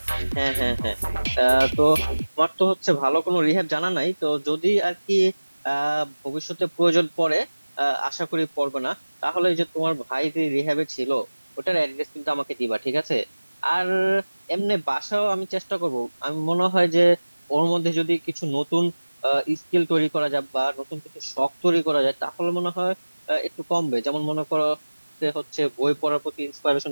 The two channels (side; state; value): both; inverted; correlation -1.00